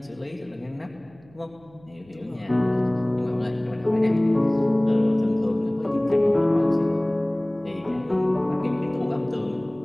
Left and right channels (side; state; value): right; noise; hum, 27 dB below the sound